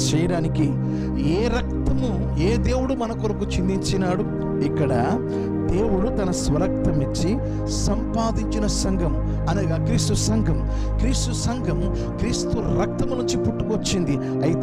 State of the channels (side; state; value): both; identical; correlation 1.00